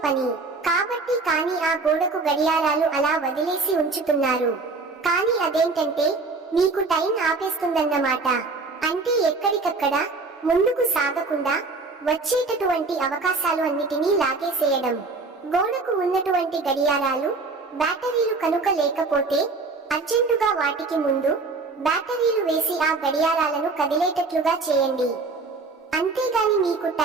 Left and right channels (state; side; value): quieter; left; 3.9 dB